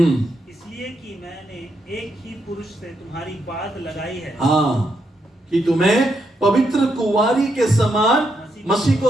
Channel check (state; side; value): normal; both; correlation 0.80